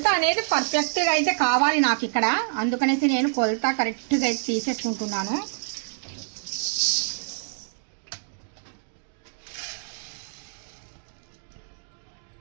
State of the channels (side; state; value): left; silent; 61 dB below the other